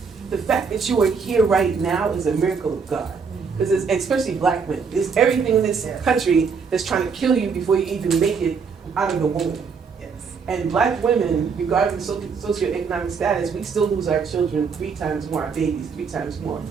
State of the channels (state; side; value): quieter; left; 5.6 dB